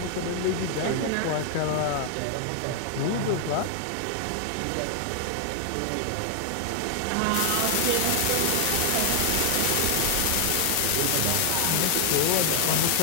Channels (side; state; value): both; different; correlation 0.00